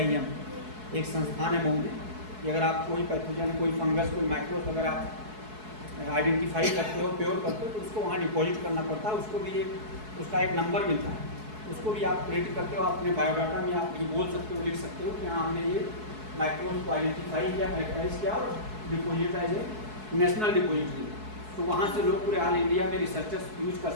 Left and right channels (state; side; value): late; left; 4.7 ms